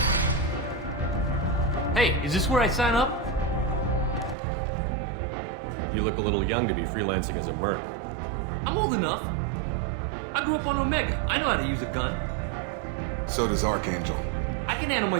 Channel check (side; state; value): left; drops out; at 4.4 s